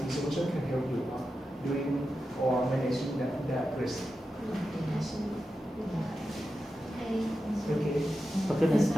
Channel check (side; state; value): both; normal; correlation 0.90